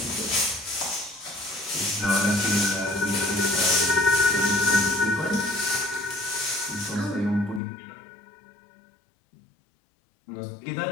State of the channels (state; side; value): drops out; right; at 7.6 s